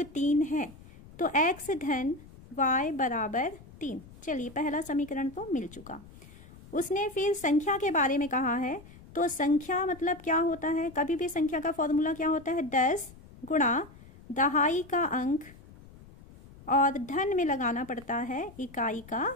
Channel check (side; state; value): left; noise; rumble, 21 dB below the sound